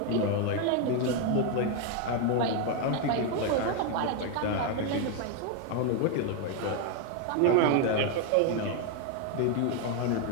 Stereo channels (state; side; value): different; both; correlation 0.01